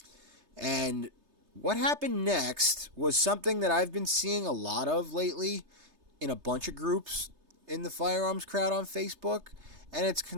And What happened next was something that I've been seeing a lot of lately in a bunch of groups in the firearms crowd on Facebook, and it's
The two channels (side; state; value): left; late; 3.3 ms